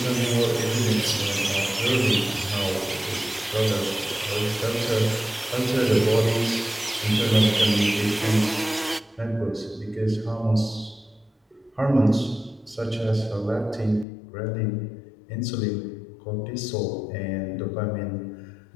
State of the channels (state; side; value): drops out; right; at 14.1 s